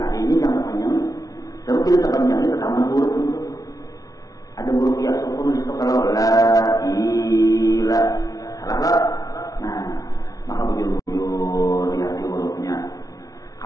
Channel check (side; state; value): right; late; 0.18 ms